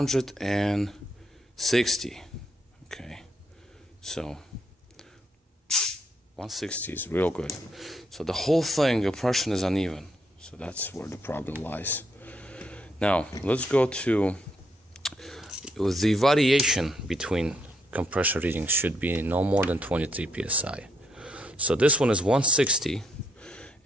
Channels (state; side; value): normal; both; correlation 0.75